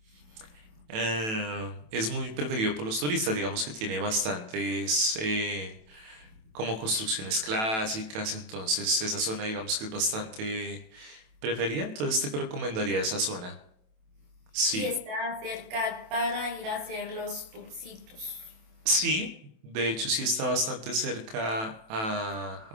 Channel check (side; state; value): left; late; 27 ms